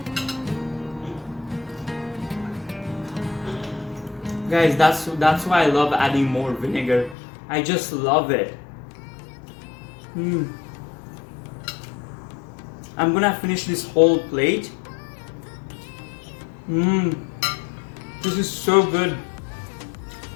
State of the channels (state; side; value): drops out; right; at 7.2 s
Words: Guys, that's why I love adding more vinegar. I just love it. I'm gonna finish this whole plate. This is so good.